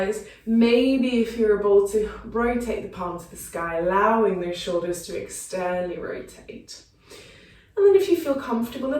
Maybe if you're able to rotate the palm to the sky, allowing those shoulders to externally rotate. And then if you feel comfortable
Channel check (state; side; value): identical; both; correlation 1.00